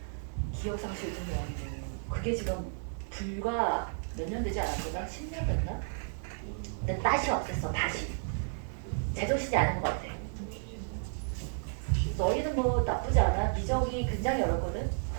기억상실 좀 아니고 그게 지금 불과 몇 년 되지 않았구나? 10년 됐나? 근데 다시 없앴어. 다시. 제정신이 아닌 것 같아. 너희는 뭐 나쁘지 않아. 미적이 굉장히 어렵거든.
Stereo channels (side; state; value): left; silent; digital silence